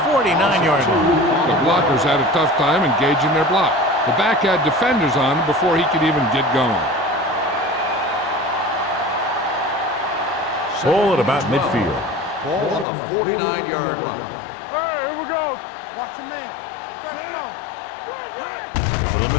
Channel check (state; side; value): drops out; right; at 12.9 s